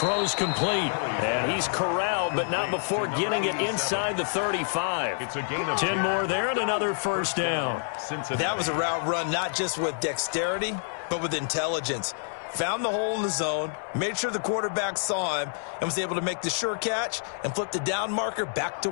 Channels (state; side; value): silent; right; digital silence